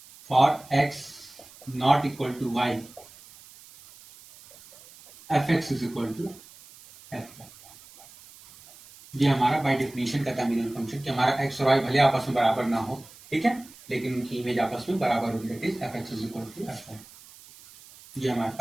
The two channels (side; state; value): right; noise; hiss, 21 dB below the sound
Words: for x not equal to y fx is equal to f। ये हमारा बाय डेफिनेशन का था मिनिमम फंक्शन कि हमारा x और y भले आपस में बराबर ना हो, ठीक है, लेकिन उनकी इमेज आपस में बराबर होगी, that is fx is equal to f। ये हमारे